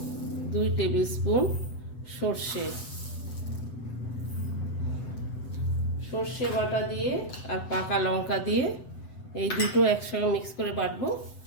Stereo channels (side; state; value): right; late; 8.0 ms